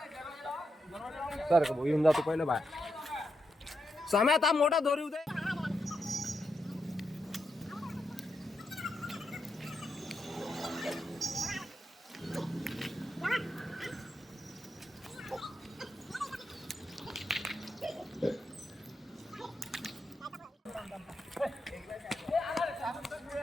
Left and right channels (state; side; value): normal; both; correlation 0.85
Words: सर येऊन जातो पहिलं बाहेर समय आता मोठा दोरी उदे